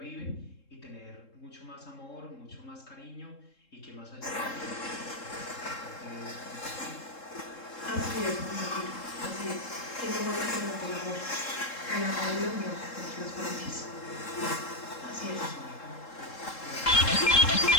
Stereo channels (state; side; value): late; right; 3.7 ms